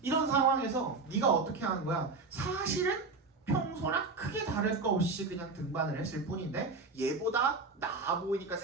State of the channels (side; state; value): left; quieter; 4.0 dB